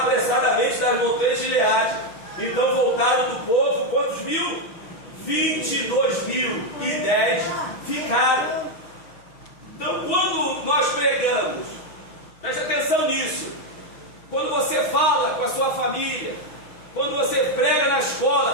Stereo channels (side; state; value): right; late; 6.2 ms